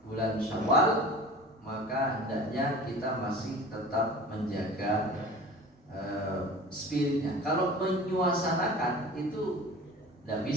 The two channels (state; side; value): normal; both; correlation 0.40